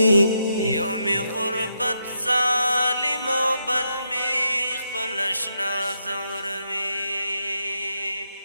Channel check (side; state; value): both; inverted; correlation -0.81